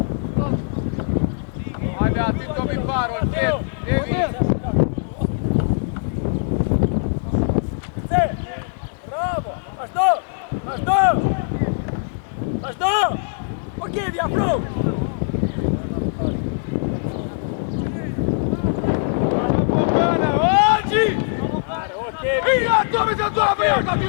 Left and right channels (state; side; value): silent; right; 62 dB below the other